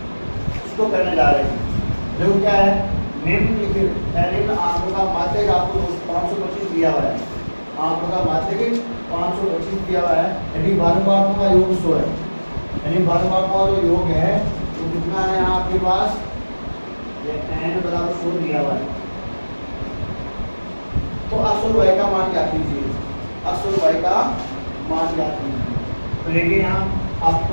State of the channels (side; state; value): both; inverted; correlation -1.00